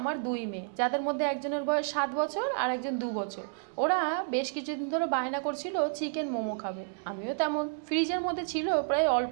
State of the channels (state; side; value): silent; left; digital silence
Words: দুই মেয়ে, যাদের মধ্যে একজনের বয়স 7 বছর আর একজন 2 বছর। ওরা বেশ কিছুদিন ধরে বায়না করছিল চিকেন মোমো খাবে। আমিও তেমন, ফ্রিজের মধ্যে ছিল প্রায় অল্প